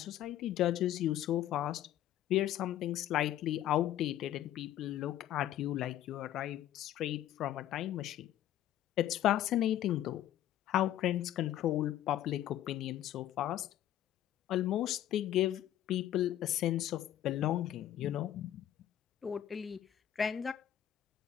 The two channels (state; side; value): quieter; right; 12.1 dB